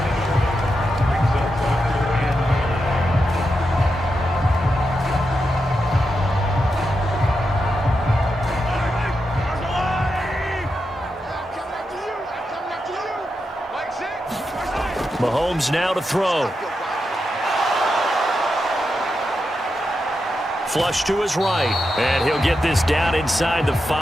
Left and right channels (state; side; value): normal; both; correlation 0.87